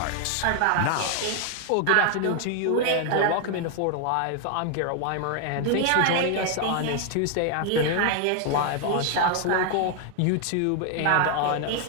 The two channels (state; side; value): different; both; correlation 0.00